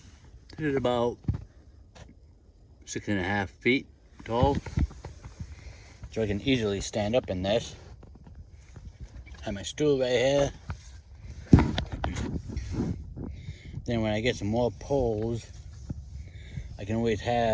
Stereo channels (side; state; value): both; identical; correlation 1.00